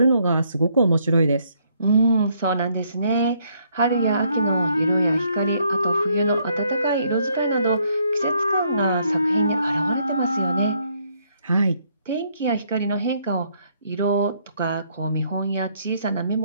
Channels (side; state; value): both; inverted; correlation -0.70